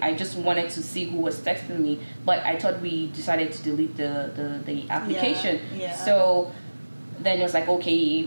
just wanted to see who was texting me, but I thought we decided to delete the application. Yeah. So then it was like,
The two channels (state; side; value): inverted; both; correlation -1.00